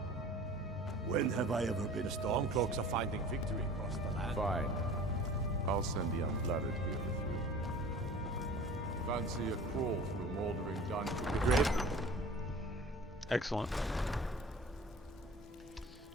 When have I ever been? The Stormcloaks are finding victory across the land. Fine. I'll send the Unblooded here with you. Fancy a crawl through moldering dungeons. The grave. Excellent.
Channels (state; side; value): normal; both; correlation 0.43